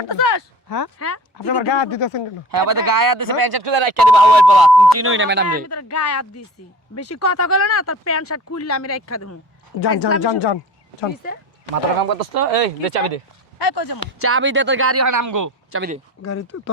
করতেছস? হ্যাঁ হ্যাঁ আপনি আমার গায়ে হাত দিতেছেন কেন? হ্যাঁ আমাদের গায়ে হাত দিছে, প্যান্ট শার্ট খুলে রাখিয়ে দিবা হাওয়ায় পলা। তুমি চিনোই না ম্যাডাম রে। আমি তোর গায়ে হাত দিছি, বেশি কথা কইলে না তোর প্যান্ট শার্ট খুললে আমি রাখা দেবো। যান যান যান যান যান। মাথাটা কাম করতেছ তো? এই দে চাবি দে, এই কই যামু? চাবি দে, তোর গাড়ি হয় আমগো, চাবি দে। গাড়ি তো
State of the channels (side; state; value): both; normal; correlation 0.41